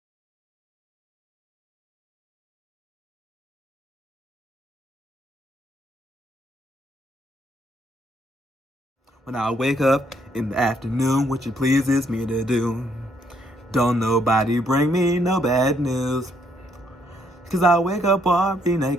When I wake up in the afternoon, which it pleases me to do. Don't nobody bring me no bad news. Cause I wake up already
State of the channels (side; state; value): both; normal; correlation 0.71